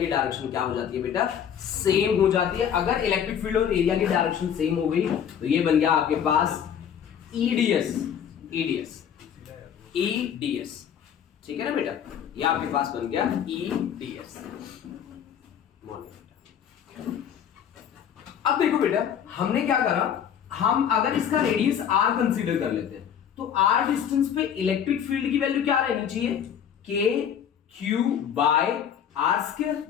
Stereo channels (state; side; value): quieter; right; 8.6 dB